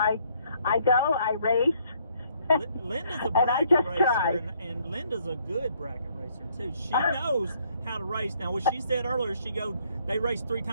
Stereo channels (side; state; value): both; inverted; correlation -0.67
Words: go, I race. Linda's a and I bracket just racer, try. and Linda's a good bracket racer too. She knows how to race. Now, what she said earlier, they race 3